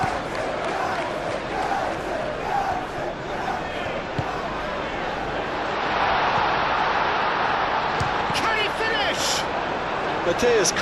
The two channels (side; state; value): both; identical; correlation 1.00